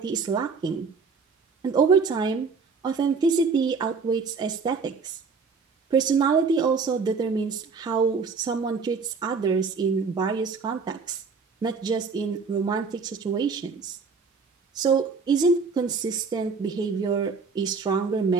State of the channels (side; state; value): left; quieter; 5.0 dB